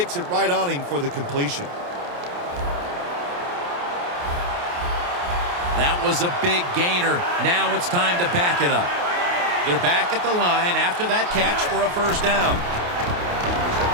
it right on him for the completion. That was a big gainer. Now it's time to back it up. They're back at the line after that catch for a first down.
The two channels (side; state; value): left; late; 28 ms